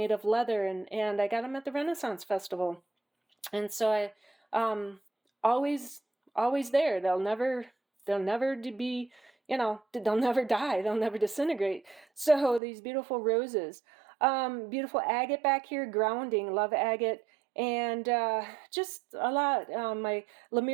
of leather, and I got them at the Renaissance Festival. And so I always there. They'll never be, they'll never die. They'll never disintegrate. So these beautiful roses. Beautiful agate back here, grounding, love agate, and just a lot. My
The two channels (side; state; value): left; drops out; at 12.6 s